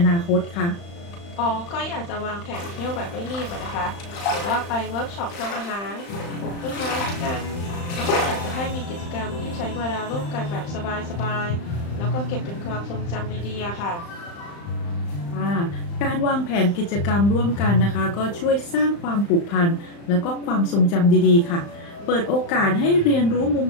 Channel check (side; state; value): right; late; 35 ms